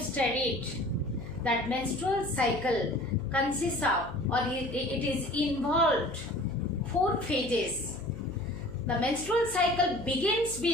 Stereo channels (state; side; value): noise; left; hum, 13 dB below the sound